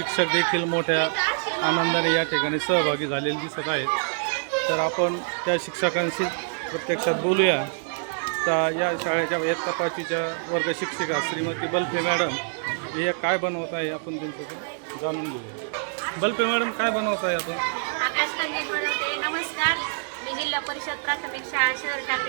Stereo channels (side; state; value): left; silent; digital silence